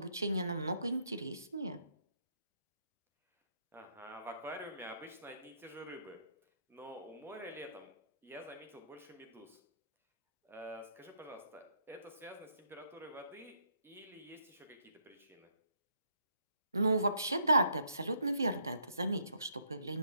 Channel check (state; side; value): inverted; both; correlation -0.71